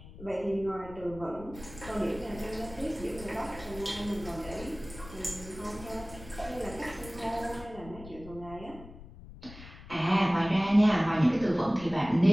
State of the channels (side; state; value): left; noise; rumble, 16 dB below the sound